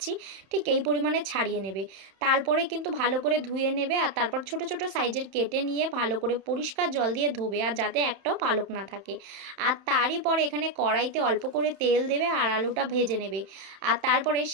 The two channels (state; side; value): late; left; 31 ms